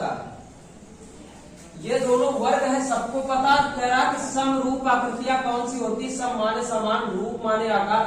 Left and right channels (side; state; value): both; identical; correlation 1.00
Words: है। ये दोनों वर्ग है, सबको पता। कह रहा कि समरूप आकृतियां कौन सी होती? सम माने समान, रूप माने